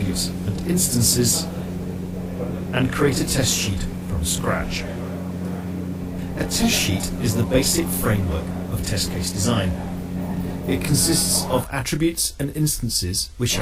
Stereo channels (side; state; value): both; identical; correlation 1.00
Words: and instances, and create a test sheet from scratch. A test sheet is the basic framework of test case design. It consists of attributes and instances which